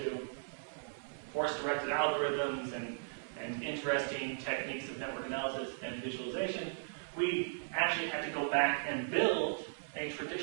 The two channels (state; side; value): silent; left; digital silence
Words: force-directed algorithms and interesting techniques of network analysis and visualization, we actually had to go back and build a